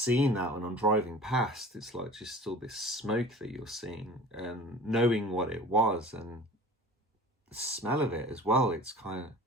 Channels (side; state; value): both; normal; correlation 0.42